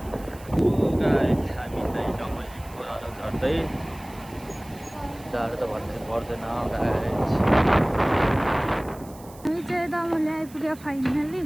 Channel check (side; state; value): right; noise; hiss, 22 dB below the sound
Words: हामी चाहिँ डमलीको अलो झर्दै जाडो त भन्नु पर्दैन गाइस हामी चाहिँ दमली आइपुग्यो फाइनली